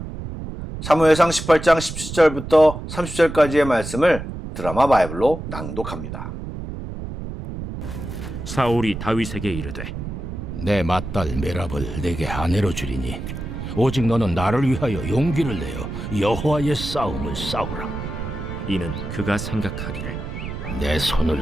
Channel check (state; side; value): noise; right; rumble, 8 dB below the sound